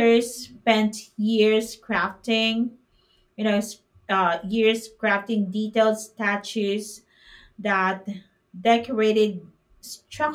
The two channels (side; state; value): both; identical; correlation 1.00